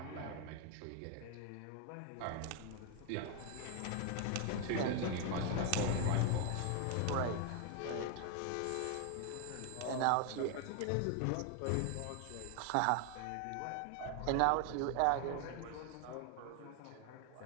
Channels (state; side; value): different; both; correlation 0.01